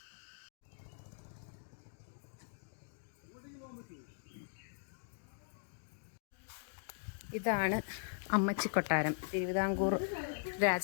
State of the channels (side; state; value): right; silent; digital silence